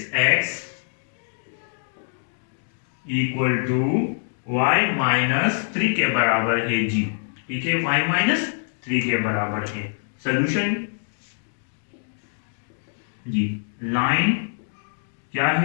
equal to y minus 3 के बराबर है जी। ठीक है, y माइनस 3 के बराबर है। सोल्यूशन जी, लाइन क्या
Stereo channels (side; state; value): right; silent; digital silence